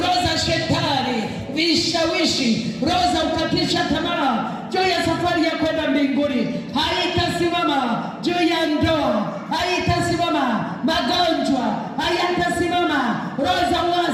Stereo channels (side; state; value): both; identical; correlation 1.00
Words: za shetani, vishawishi, roho za kukatisha tamaa juu ya safari ya kwenda mbinguni haitasimama. Juu ya ndoa haitasimama. Magonjwa hayatasimama. Roho za